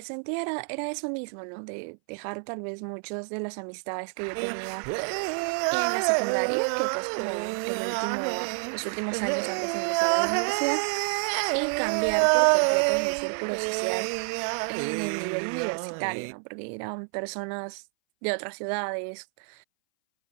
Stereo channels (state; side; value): silent; left; 59 dB below the other